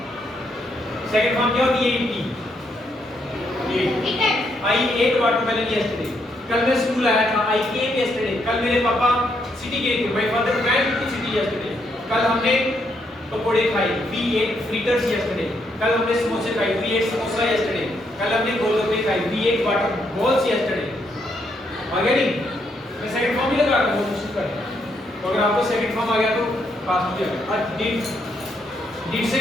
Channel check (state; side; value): normal; both; correlation 0.76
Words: सेकंड फॉर्म क्या होती है? आई एट वाटरमेलन यस्टरडे। कल मैं स्कूल आया था, आई केम यस्टरडे। कल मेरे पापा सिटी गए थे, my father went to city yesterday. कल हमने पकोड़े खाए, वी एट फ्रिटर्स यस्टरडे। कल हमने समोसे खाए, वी एट समोसा यस्टरडे। कल हमने गोलगप्पे खाए, we ate water balls yesterday. आ गया नहीं? मैं सेकंड फॉर्म ही लगा रहा हूं, कोशिश कर। तो अगर आपको सेकंड फॉर्म आ गया तो पास हो जाएगा। और डिड से